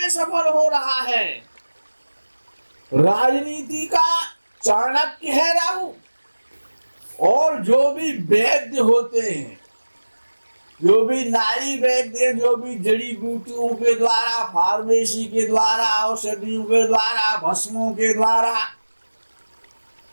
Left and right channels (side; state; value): both; inverted; correlation -1.00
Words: में सफल हो रहा है, राजनीति का चाणक्य है राहु। और जो भी वैद्य होते हैं, जो भी नारी वैद्य, जो भी जड़ी बूटियों के द्वारा, फार्मेसी के द्वारा, औषधियों के द्वारा, भस्मों के द्वारा